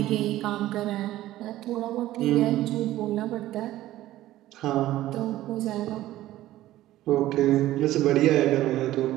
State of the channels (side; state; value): left; quieter; 14.9 dB